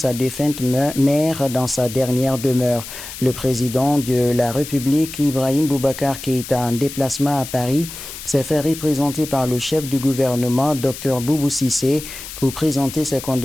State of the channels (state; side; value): noise; left; hiss, 11 dB below the sound